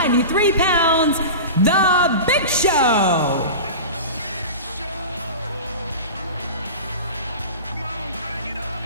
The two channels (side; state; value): both; inverted; correlation -0.31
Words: pounds, The Big Show.